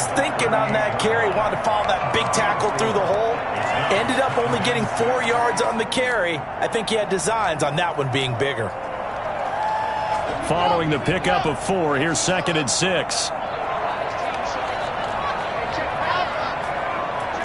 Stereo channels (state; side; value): identical; both; correlation 1.00